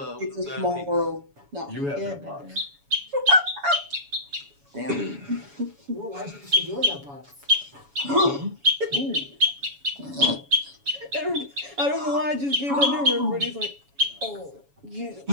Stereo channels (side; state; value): left; late; 7.1 ms